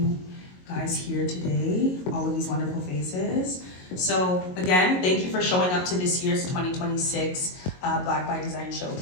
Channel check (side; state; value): right; late; 22 ms